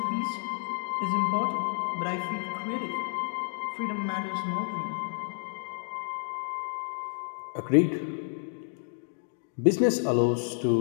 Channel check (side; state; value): right; silent; digital silence